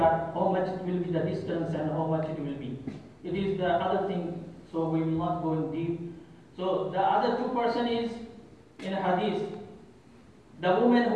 how much it will be the distance and how much it will be. It is the other thing, so we will not go in deep. So the other 2 persons is in hadith, the woman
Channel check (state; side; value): identical; both; correlation 1.00